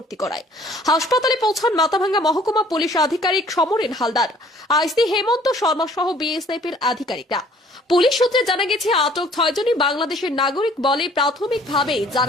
করায়। হাসপাতালে পৌঁছান মাথাভাঙ্গা মহকুমা পুলিশ আধিকারিক সমরেন হালদার, আইসি হেমন্ত শর্মা সহ বিএসএফ এর আধিকারিকরা। পুলিশ সূত্রে জানা গেছে, আটক 6 জনই বাংলাদেশের নাগরিক বলে প্রাথমিকভাবে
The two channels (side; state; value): both; normal; correlation 0.56